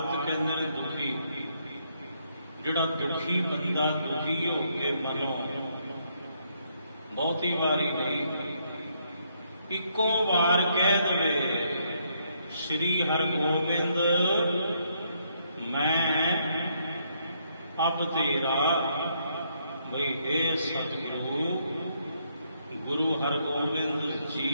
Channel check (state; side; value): inverted; both; correlation -0.73